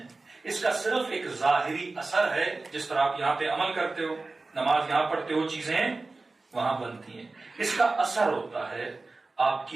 اس کا صرف ایک ظاہری اثر ہے. جس طرح آپ یہاں پہ عمل کرتے ہو، نماز یہاں پڑھتے ہو، چیزیں وہاں بنتی ہیں، اس کا اثر ہوتا ہے آپ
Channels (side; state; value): left; quieter; 3.5 dB